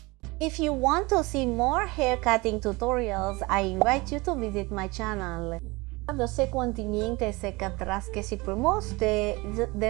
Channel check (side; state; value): left; quieter; 23.9 dB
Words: If you want to see more hair cutting tutorials, I invite you to visit my channel. Yo sé continuamente se catras que si promotes the